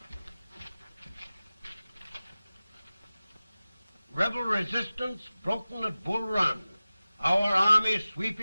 Rebel resistance broken at Bull Run. Our army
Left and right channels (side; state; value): both; inverted; correlation -0.97